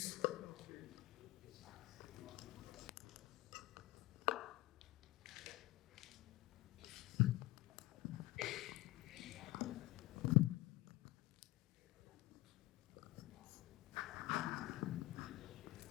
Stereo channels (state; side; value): quieter; right; 19.3 dB